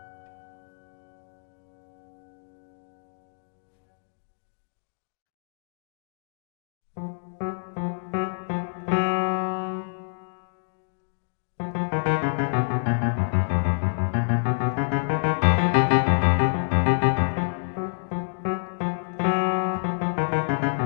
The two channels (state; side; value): silent; right; digital silence